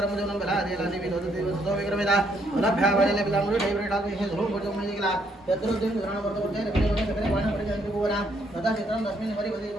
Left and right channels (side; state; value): both; normal; correlation 0.71